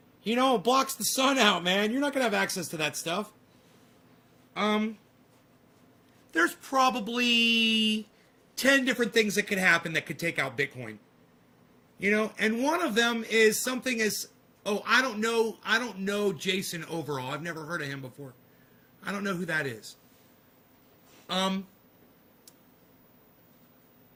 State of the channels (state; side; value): identical; both; correlation 1.00